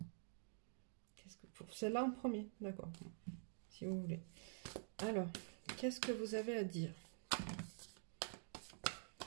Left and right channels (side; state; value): left; silent; digital silence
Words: Pour celle-là en premier, d'accord, si vous voulez. Alors, qu'est-ce que vous avez à dire?